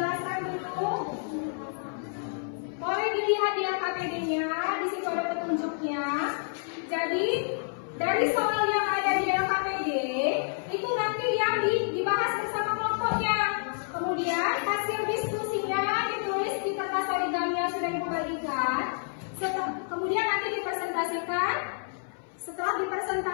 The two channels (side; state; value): right; silent; 59 dB below the other